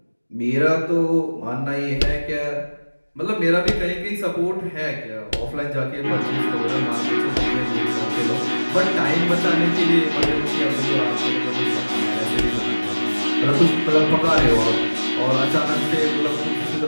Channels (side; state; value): both; inverted; correlation -1.00